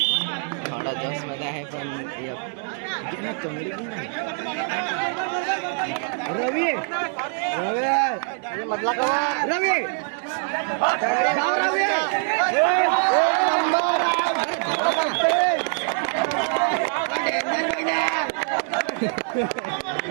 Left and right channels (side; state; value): left; silent; 56 dB below the other